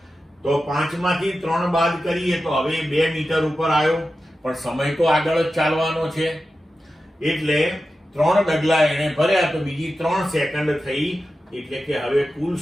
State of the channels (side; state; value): both; normal; correlation 0.92